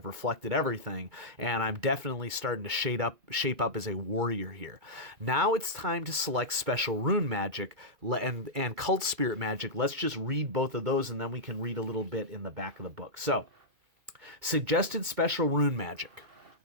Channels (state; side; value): late; left; 2.3 ms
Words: reflected everything, and I'm definitely starting to shape up as a warrior here. Now it's time to select special rune magic and cult spirit magic. Let's just read both of those, and then we can read a little bit in the back of the book. So, suggested special rune magic.